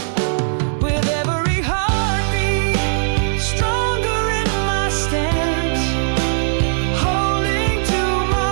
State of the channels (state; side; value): silent; left; digital silence